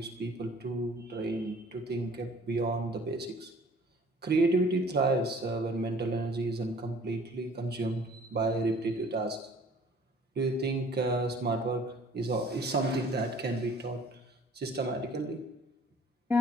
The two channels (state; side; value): normal; both; correlation 0.52